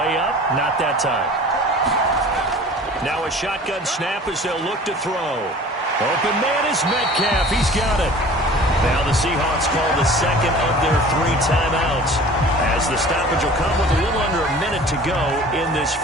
up. Not that time. Now a shotgun snap as they'll look to throw. Open man is Metcalf. He's got it. Now the Seahawks call the second of their 3 timeouts as the stoppage will come with a little under a minute to go in this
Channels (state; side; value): normal; both; correlation 0.44